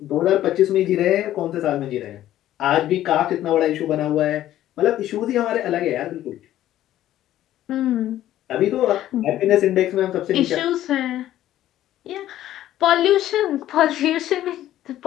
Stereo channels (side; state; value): right; quieter; 13.1 dB